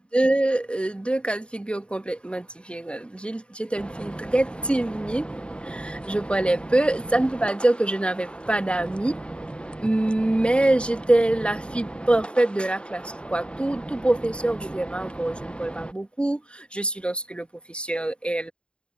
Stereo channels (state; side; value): late; right; 0.054 ms